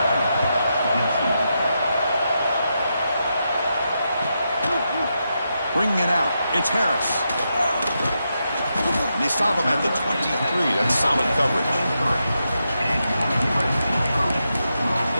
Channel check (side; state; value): both; inverted; correlation -0.85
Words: Bringing it out. It's Harris. And they stop him at the 23. That's solid coverage.